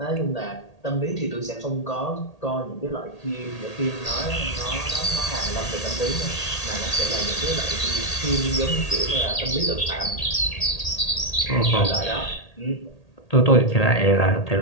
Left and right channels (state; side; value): late; right; 1.8 ms